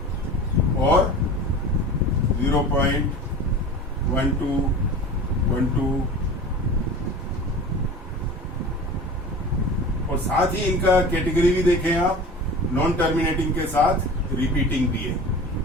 और 0.12 और साथ ही इनका कैटेगरी भी देखें आप, नॉन टर्मिनेटिंग के साथ रिपीटिंग भी है,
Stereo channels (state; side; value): normal; both; correlation 0.36